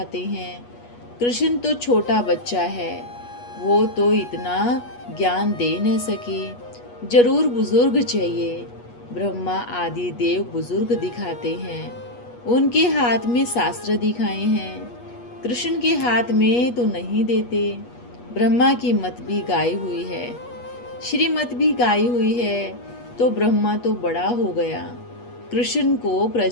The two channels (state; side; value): late; right; 8.3 ms